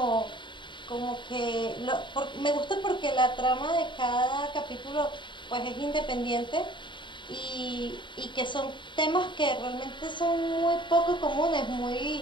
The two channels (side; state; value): right; late; 0.23 ms